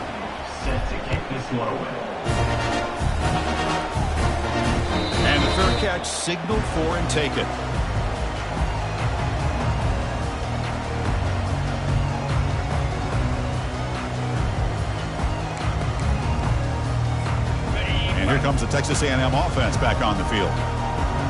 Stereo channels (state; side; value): identical; both; correlation 1.00